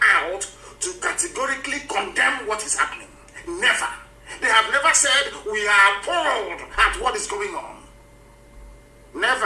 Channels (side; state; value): both; identical; correlation 1.00